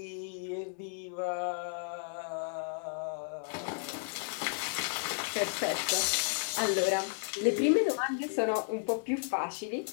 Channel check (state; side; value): silent; right; digital silence